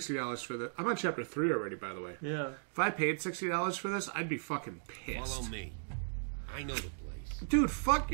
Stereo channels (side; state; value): left; silent; digital silence